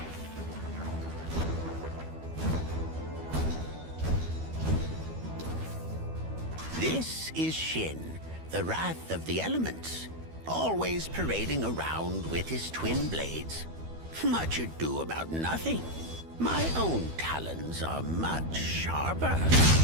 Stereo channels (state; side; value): late; left; 12 ms